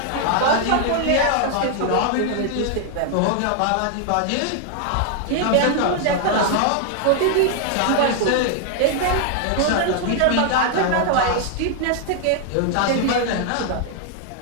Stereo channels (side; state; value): both; different; correlation 0.00